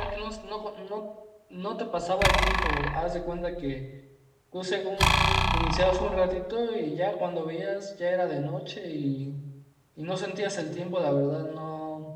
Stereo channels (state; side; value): identical; both; correlation 1.00